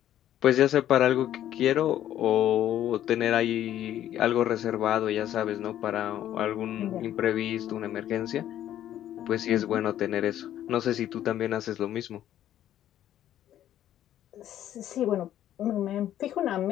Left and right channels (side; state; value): right; quieter; 11.8 dB